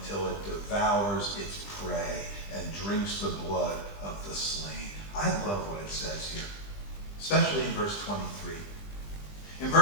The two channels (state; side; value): late; right; 20 ms